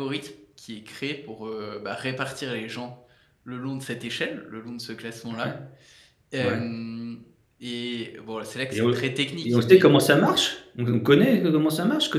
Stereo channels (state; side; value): identical; both; correlation 1.00